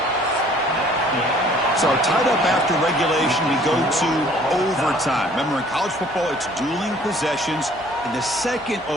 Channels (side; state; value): both; normal; correlation 0.56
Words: So tied up after regulation, we go to overtime. Remember, in college football, it's dueling possessions. In the 2nd